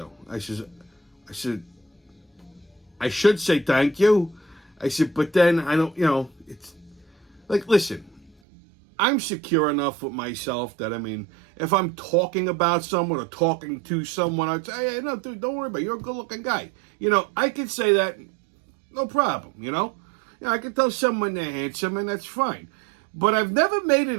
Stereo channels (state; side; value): drops out; left; at 8.3 s